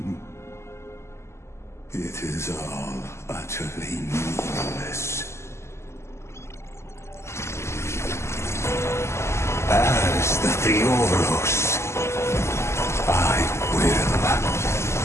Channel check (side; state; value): right; late; 0.13 ms